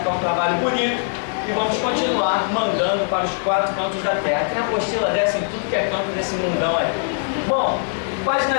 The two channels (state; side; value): silent; right; 63 dB below the other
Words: um trabalho bonito. E vamos continuar mandando para os 4 cantos da terra. Tem apostila dessa em tudo que é canto desse mundão aí. Bom, página